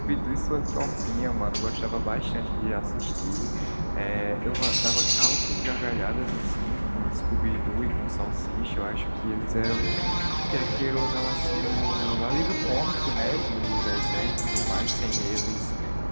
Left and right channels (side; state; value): both; inverted; correlation -1.00